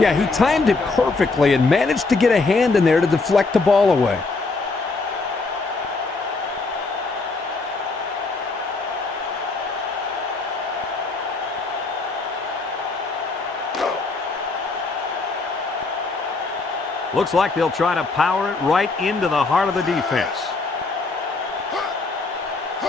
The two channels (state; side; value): quieter; right; 3.8 dB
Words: he timed it perfectly and managed to get a hand in there to deflect the ball away. Looks like they'll try to power it right into the heart of the defense.